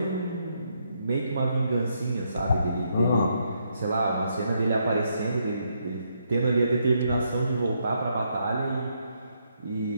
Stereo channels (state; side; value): inverted; both; correlation -0.76